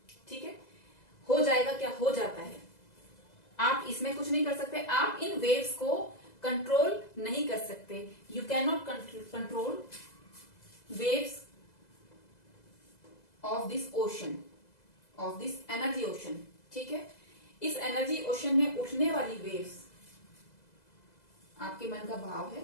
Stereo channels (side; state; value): right; late; 2.0 ms